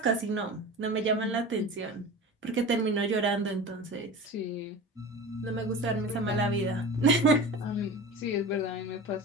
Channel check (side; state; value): both; normal; correlation 0.33